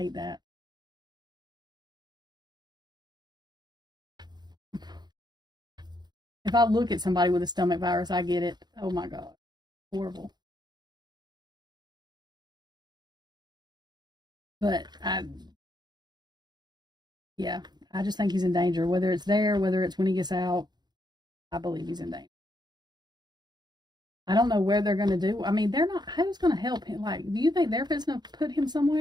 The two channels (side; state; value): left; late; 0.20 ms